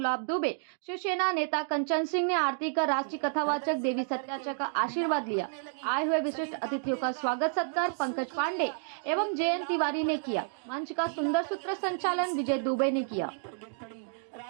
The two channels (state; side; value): silent; left; digital silence